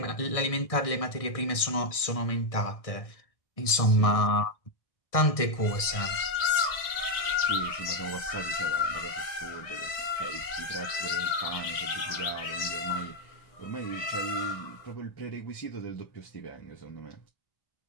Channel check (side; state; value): right; late; 1.6 ms